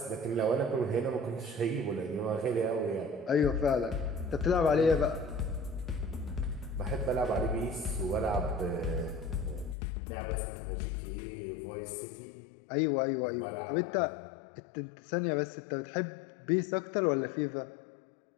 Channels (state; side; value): drops out; right; at 9.8 s